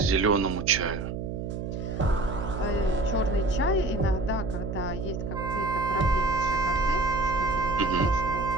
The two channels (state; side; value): noise; right; hum, 5 dB below the sound